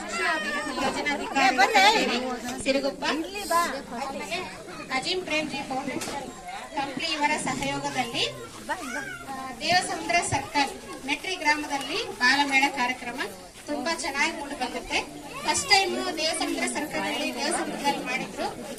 ಯೋಜನಾಧಿಕಾರಿ ಸಿರುಗುಪ್ಪ, ಅಜಿಂ ಪ್ರೇಮ್ಜಿ ಫೌಂಡೇಶನ್ ಕಂಪ್ಲಿ ಇವರ ಸಹಯೋಗದಲ್ಲಿ ದೇವಸಮುದ್ರ ಸರ್ಕಲ್ ಮೆಟ್ರಿ ಗ್ರಾಮದಲ್ಲಿ ಬಾಲಮೇಳ ಕಾರ್ಯಕ್ರಮ ತುಂಬಾ ಚೆನ್ನಾಗಿ ಮೂಡಿ ಬಂದಿರುತ್ತೆ. ಫಸ್ಟ್ ಟೈಮ್ ದೇವಸಮುದ್ರ ಸರ್ಕಲ್ ಅಲ್ಲಿ ದೇವಸಮುದ್ರದಲ್ಲಿ ಮಾಡಿದ್ರು,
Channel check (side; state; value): both; identical; correlation 1.00